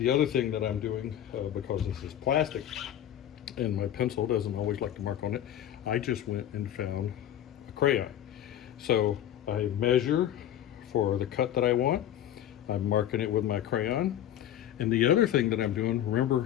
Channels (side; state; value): right; quieter; 11.1 dB